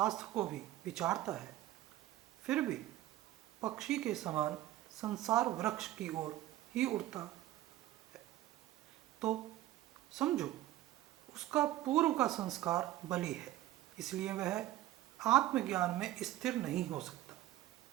को भी विचारता है, फिर भी पक्षी के समान संसार वृक्ष की ओर ही उड़ता है, तो समझो उसका पूर्व का संस्कार बलि है, इसलिए वह आत्मज्ञान में स्थिर नहीं हो सकता।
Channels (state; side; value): quieter; left; 14.6 dB